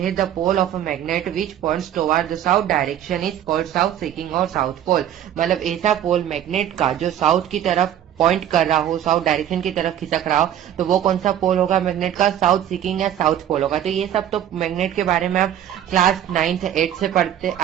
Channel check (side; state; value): left; quieter; 10.7 dB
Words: the pole of a magnet which points toward the south direction is called south seeking और साउथ पोल। मतलब ऐसा पोल मैग्नेट का जो साउथ की तरफ पॉइंट कर रहा हो, साउथ डायरेक्शन की तरफ खिसक रहा हो, तो वो कौन सा पोल होगा मैग्नेट का, साउथ सीकिंग या साउथ पोल होगा। तो ये सब तो मैग्नेट के बारे में आप क्लास 9th 8th से पढ़ते